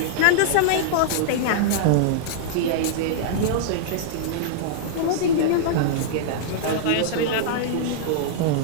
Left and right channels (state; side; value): different; both; correlation -0.02